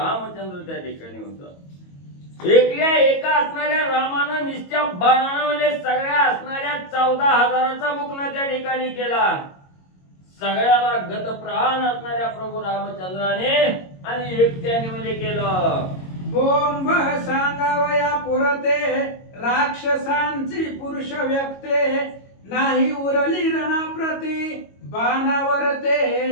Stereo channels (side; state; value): right; late; 22 ms